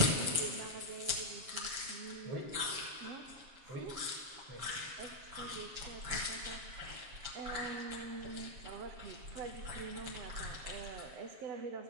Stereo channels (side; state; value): left; late; 7.4 ms